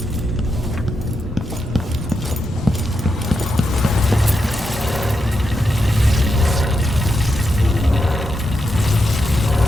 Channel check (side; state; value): both; normal; correlation 0.85